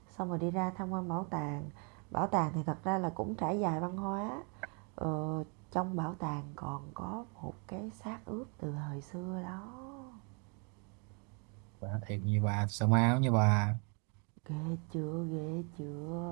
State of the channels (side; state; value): left; quieter; 36.2 dB